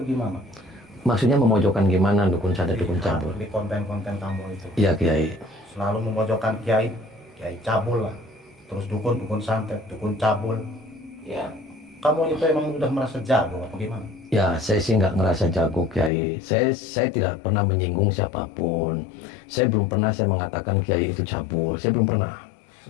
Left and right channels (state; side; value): drops out; right; at 16.1 s